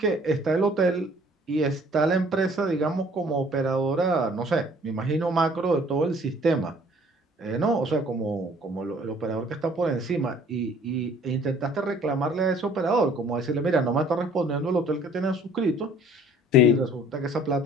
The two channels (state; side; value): normal; both; correlation 0.55